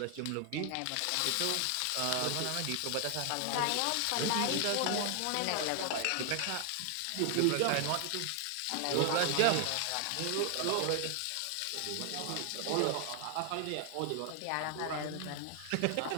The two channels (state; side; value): different; both; correlation 0.00